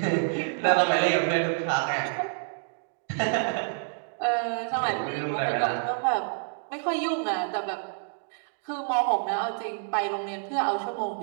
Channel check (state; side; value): silent; left; digital silence